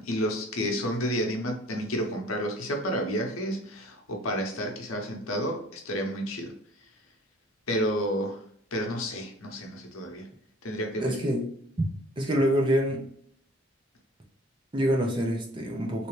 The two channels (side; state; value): both; normal; correlation 0.51